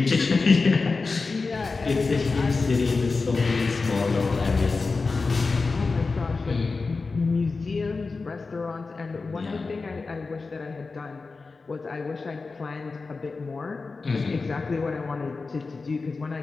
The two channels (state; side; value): quieter; right; 4.1 dB